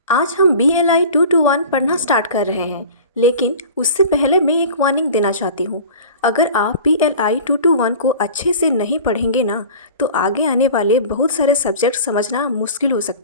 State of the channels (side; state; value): both; inverted; correlation -0.39